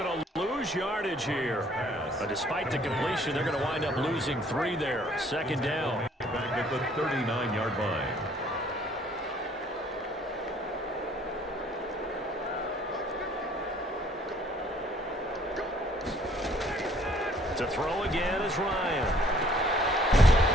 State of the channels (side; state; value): both; normal; correlation 0.59